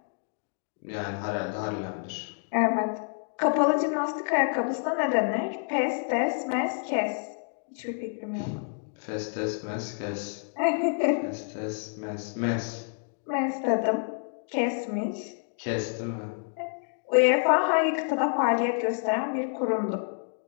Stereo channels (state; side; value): silent; right; digital silence